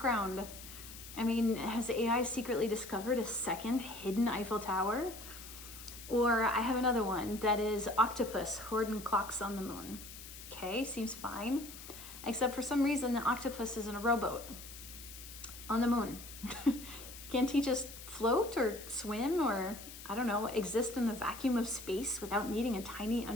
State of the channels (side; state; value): left; noise; hiss, 14 dB below the sound